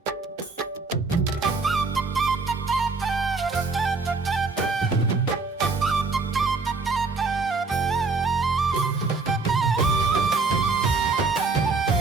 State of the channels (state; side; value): quieter; left; 4.1 dB